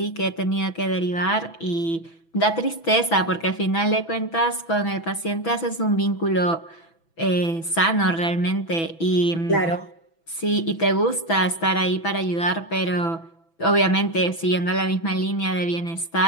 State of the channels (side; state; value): right; late; 6.1 ms